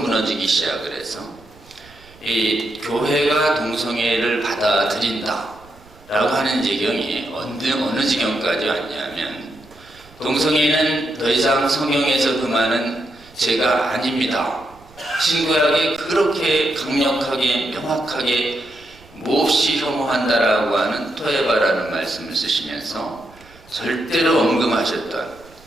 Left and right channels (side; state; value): right; noise; rumble, 26 dB below the sound